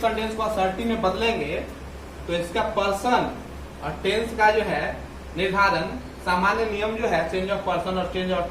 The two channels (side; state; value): both; identical; correlation 1.00